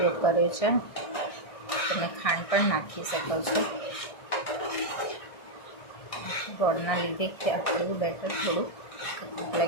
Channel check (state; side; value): late; right; 1.6 ms